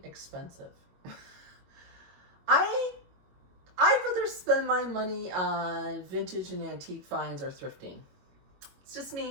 expensive. I'd rather spend my money on vintage and antique finds or thrifting. It's just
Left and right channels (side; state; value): left; late; 22 ms